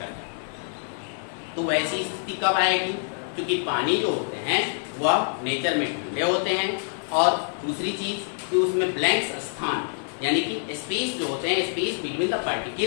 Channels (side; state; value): right; silent; 61 dB below the other